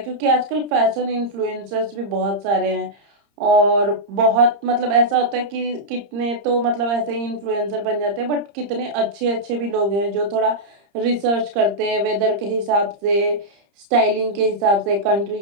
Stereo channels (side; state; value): left; late; 30 ms